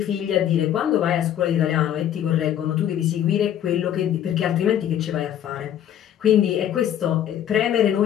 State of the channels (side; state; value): right; quieter; 10.5 dB